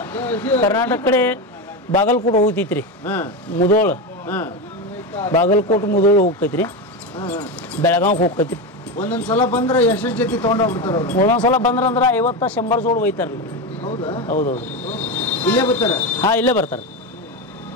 ಕರ್ನಾಟಕ ಕಡೆ ಬಾಗಲಕೋಟೆ ಹೋಗ್ತೈತ್ರಿ, ಮುದೋಳ, ಬಾಗಲಕೋಟೆ ಮುದೋಳ ಹೋಗ್ತೈತ್ರಿ, ಬೆಳಗಾವ್ ಹೋಗ್ತೈತ್ರಿ. ಒಂದೊಂದ್ಸಲ ಬಂದ್ರೆ ಎಷ್ಟು ಜೊತೆ ತೊಗೊಂಡೋಗ್ಬಿಡ್ತಾರ ಅವ್ರು? ಒಂದೊಂದ್ಸಲ ಬಂದ್ರಂದ್ರೆ 50-100 ಜೋಡಿ ಒಯ್ತಾರಲ್ಲ. ಹೌದಾ? ಹೌದೌದು. ಇಲ್ಲೇ ಬರ್ತಾರ? ಹಾಂ, ಇಲ್ಲೇ ಬರ್ತಾರೆ.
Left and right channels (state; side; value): normal; both; correlation 0.16